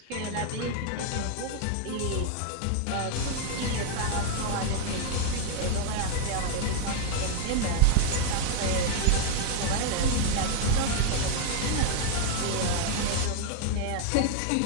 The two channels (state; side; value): different; both; correlation 0.00